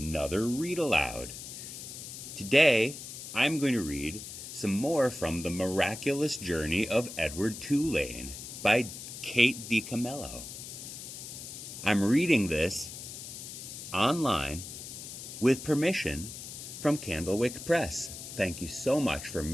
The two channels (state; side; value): noise; left; hiss, 10 dB below the sound